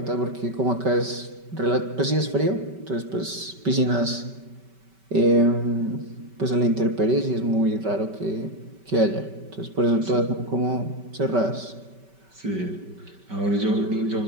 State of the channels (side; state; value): left; late; 5.2 ms